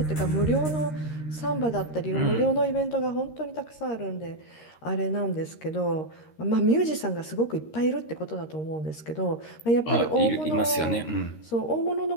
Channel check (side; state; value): right; late; 13 ms